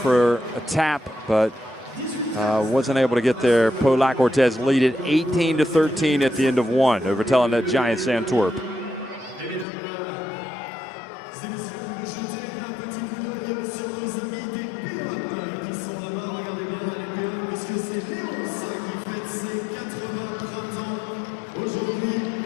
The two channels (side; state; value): right; drops out; at 9.7 s